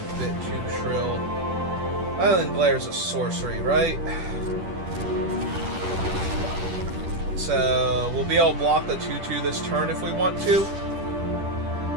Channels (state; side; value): late; left; 10 ms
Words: bit too shrill. Island Glare's a sorcery, right? So, we'll be able to block the 2/2 this turn if we want to.